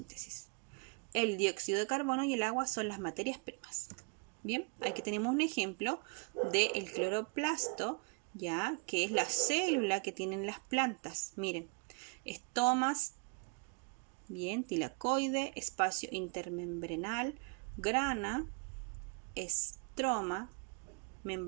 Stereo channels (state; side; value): quieter; left; 35.3 dB